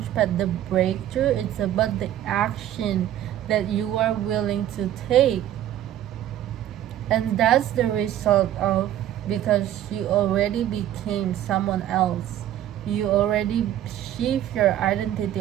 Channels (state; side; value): quieter; left; 12.0 dB